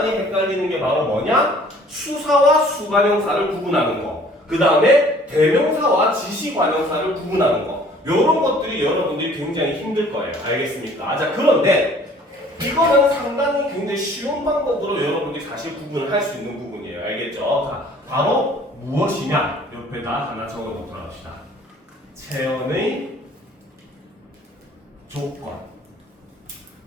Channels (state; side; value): normal; both; correlation 0.54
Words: 헷갈리는 게 바로 뭐냐? 수사와 수관형사를 구분하는 거. 그 다음에 대명사와 지시관형사를 구분하는 거. 요런 것들이 여러분들이 굉장히 힘들 거예요. 알겠습니까? 자, 그런데 이거는 상당히 굉장히 쉬운 방법으로 여러분들이 사실 구분을 할 수 있는 부분이에요. 알겠죠? 자, 바로 무엇이냐? 옆에다 하나 적어 놓도록 합시다. 체언의 조건.